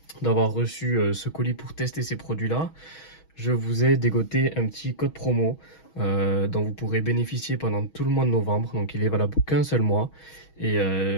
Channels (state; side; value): late; right; 6.3 ms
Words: d'avoir reçu ce colis pour tester ces produits-là, je vous ai dégoté un petit code promo dont vous pourrez bénéficier pendant tout le mois de novembre. Donc il est valable qu'un seul mois. Et